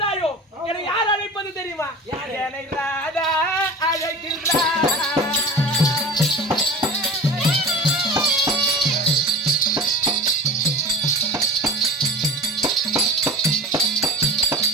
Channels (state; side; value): normal; both; correlation 0.35